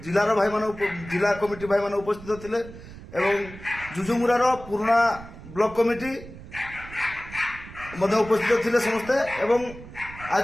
जिलार भाई मान जिला कमिटी भाई मान उपस्थित थिले एवं जुजुमुरा रो पुराना ब्लॉक कमिटी मध्य उपस्थित थिले समस्ते एवं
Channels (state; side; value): noise; right; rumble, 16 dB below the sound